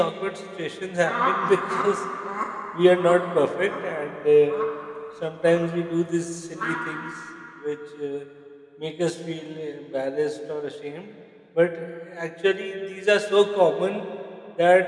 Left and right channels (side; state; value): both; identical; correlation 1.00